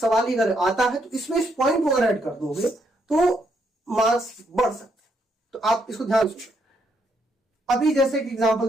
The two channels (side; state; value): both; normal; correlation 0.75